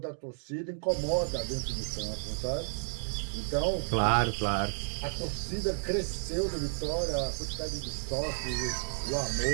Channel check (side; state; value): left; silent; digital silence